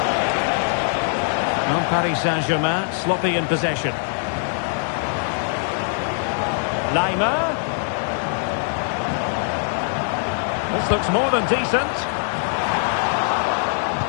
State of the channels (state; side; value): silent; right; digital silence